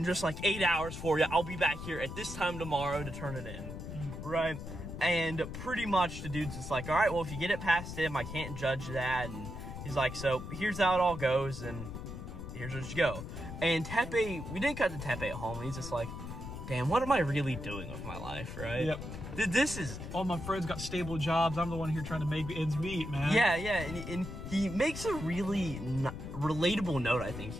just like 8 hours for you. I'll be back here at this time tomorrow to turn it in, right? And pretty much the dude's just like, all right, well, if you get it past him, I can't judge that. And he's like, so here's how it all goes, and here's where you go. And Teppei, we didn't cut to Teppei at home, and he's just like, damn, what am I really doing with my life, right? Yep. This is... All my friends got stable jobs. I'm the one here trying to make ends meet, man. Yeah, and he makes a really relatable note, I think,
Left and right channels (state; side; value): noise; left; rumble, 8 dB below the sound